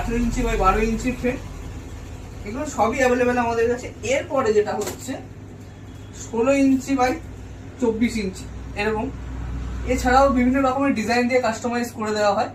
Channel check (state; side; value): identical; both; correlation 1.00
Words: ইঞ্চি বাই 12 ইঞ্চি ফ্রেম। এগুলো সবই অ্যাভেলেবেল আমাদের কাছে। এরপরে যেটা হচ্ছে 16 ইঞ্চি বাই 24 ইঞ্চি এরকম। এছাড়াও বিভিন্ন রকমের ডিজাইন দিয়ে কাস্টমাইজ করে দেওয়া হয়।